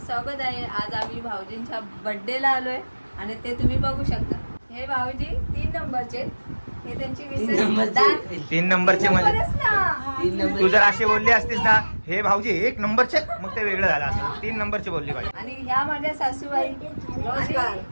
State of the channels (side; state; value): both; inverted; correlation -1.00